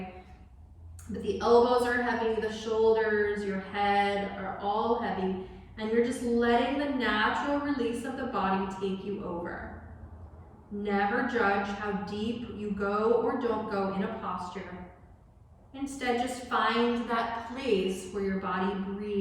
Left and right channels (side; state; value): both; identical; correlation 1.00